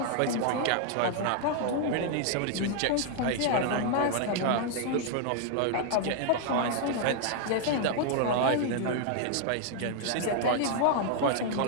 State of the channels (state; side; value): different; both; correlation -0.01